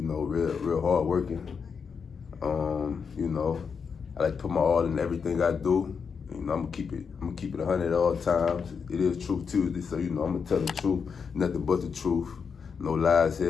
know, real hard working. You know, I like to put my all in everything I do. You know, I'm gonna keep it 100 at all times. It is Truth Tuesday, so you know I'm gonna tell the truth, nothing but the truth, no lies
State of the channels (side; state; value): right; quieter; 6.0 dB